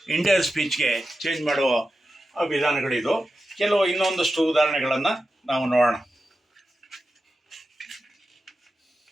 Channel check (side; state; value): both; normal; correlation 0.91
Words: ಇಂಡೈರೆಕ್ಟ್ ಸ್ಪೀಚ್ಗೆ ಚೇಂಜ್ ಮಾಡುವ ವಿಧಾನಗಳಿದು. ಕೆಲವು ಇನ್ನೊಂದಷ್ಟು ಉದಾಹರಣೆಗಳನ್ನು ನಾವು ನೋಡೋಣ.